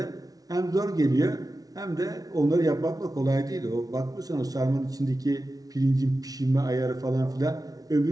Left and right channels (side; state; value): left; late; 0.18 ms